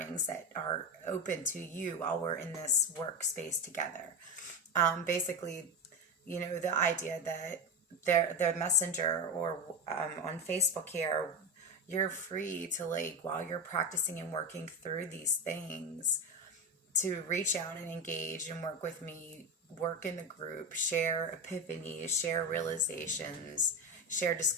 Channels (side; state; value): both; normal; correlation 0.17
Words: that are open to you while we're in this workspace together. Basically, the idea that the messenger or on Facebook here, you're free to, like, while you're practicing and working through these things, to reach out and engage and work with me, work in the group, share epiphanies, share realizations, share